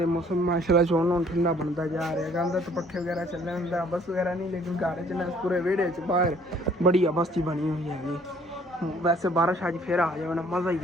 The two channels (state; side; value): normal; both; correlation 0.59